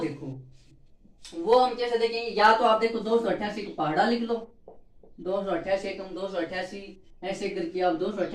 वो हम कैसे देखेंगे, या तो आप देखो 288 का पहाड़ा लिख लो, 288 एकम 288, ऐसे करके आप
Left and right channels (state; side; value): identical; both; correlation 1.00